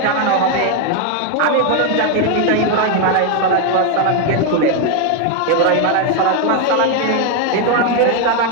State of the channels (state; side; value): different; both; correlation 0.01